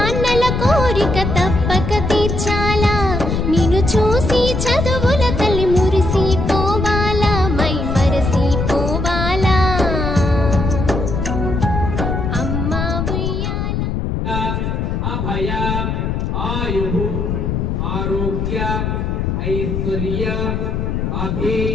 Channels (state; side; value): noise; left; rumble, 1 dB below the sound